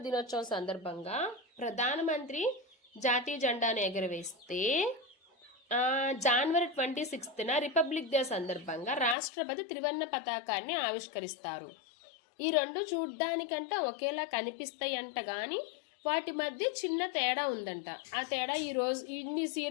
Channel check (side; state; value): right; drops out; at 9.2 s